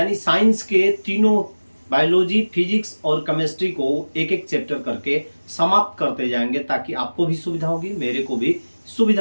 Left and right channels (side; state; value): both; inverted; correlation -1.00